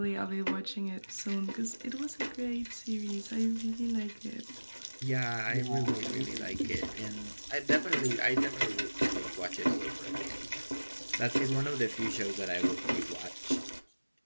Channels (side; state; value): both; inverted; correlation -1.00